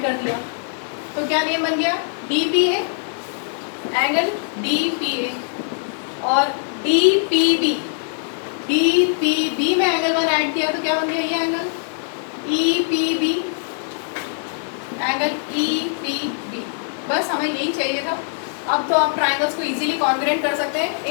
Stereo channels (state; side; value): silent; right; digital silence